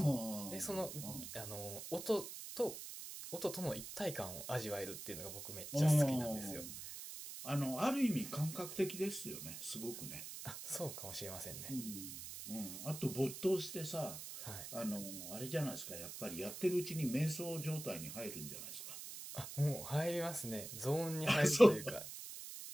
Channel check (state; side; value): noise; right; hiss, 9 dB below the sound